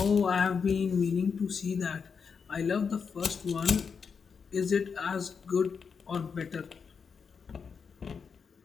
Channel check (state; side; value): quieter; right; 6.0 dB